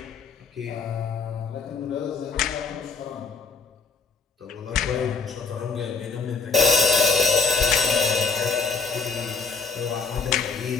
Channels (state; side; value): quieter; right; 4.8 dB